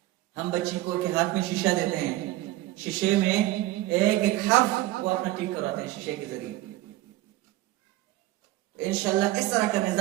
ہم بچی کو کے ہاتھ میں شیشہ دیتے ہیں، شیشے میں ایک حرف وہ اپنا ٹھیک کراتے ہیں شیشے کے ذریعے. انشاءاللہ اس طرح کا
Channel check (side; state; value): left; quieter; 16.4 dB